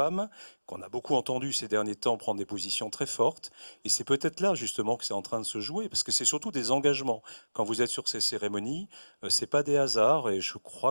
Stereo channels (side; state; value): both; inverted; correlation -1.00